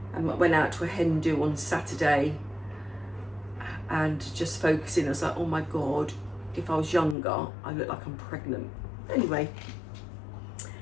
And I went out to a hen do on Saturday and just focusing, I was like, oh my God, if I was younger, I look like I'm pregnant. Anyway,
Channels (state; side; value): drops out; right; at 7.2 s